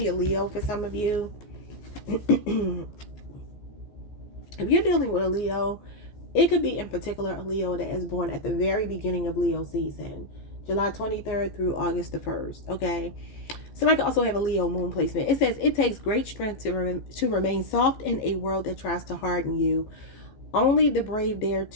a Leo for some of you. If you're dealing with a Leo, it could be in particular a Leo that is born at the very beginning of Leo season, July 23rd through August the 1st. Okay. Somebody could also have a Leo moon placement. It says it takes great strength to remain soft in a world that tries to harden you. Only the brave dare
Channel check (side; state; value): right; late; 15 ms